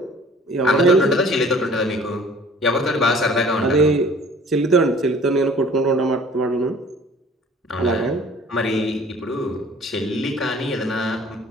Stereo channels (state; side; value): normal; both; correlation 0.51